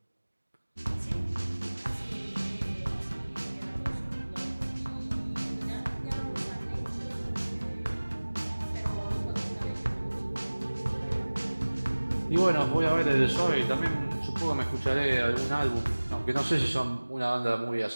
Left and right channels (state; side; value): inverted; both; correlation -1.00